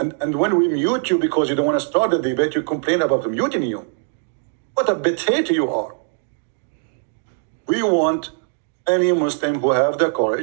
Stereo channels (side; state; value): left; silent; 61 dB below the other